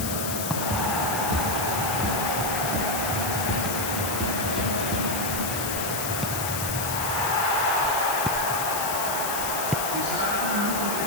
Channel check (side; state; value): left; noise; hiss, 3 dB below the sound